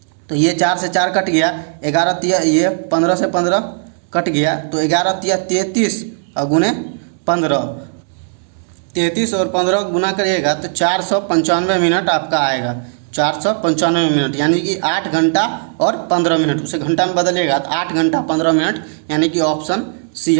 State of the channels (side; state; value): left; silent; digital silence